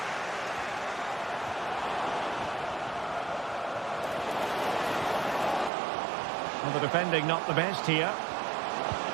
Well, the defending not the best here.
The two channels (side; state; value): left; drops out; at 5.7 s